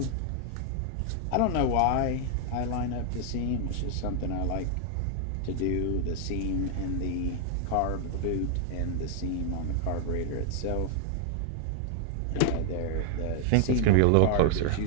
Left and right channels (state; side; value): different; both; correlation 0.00